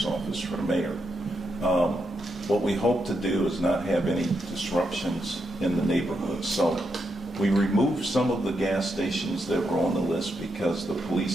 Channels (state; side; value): normal; both; correlation 0.82